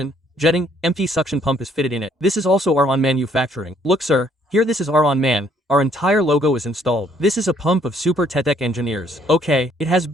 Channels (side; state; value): both; normal; correlation 0.65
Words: jetting, empty suction pump is fitted in it. This is also our on manufacturing. Look sir, here this is our on man. Our entire logo is installed. This is a pump of Super Tech engineers. Okay, it has